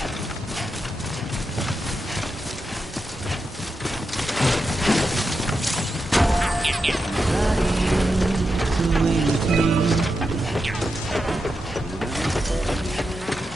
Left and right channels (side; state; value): both; normal; correlation 0.87